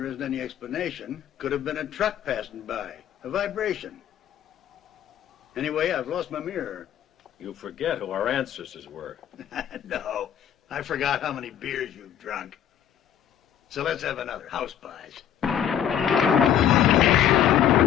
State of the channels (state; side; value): quieter; right; 9.8 dB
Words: isn't any explanation. Could have been a truck passing by. A vibration. Anyway, I've lost my mirror. You forget who our ancestors were. No, I forgot how many beers you've drunk. So let's have another. House pies.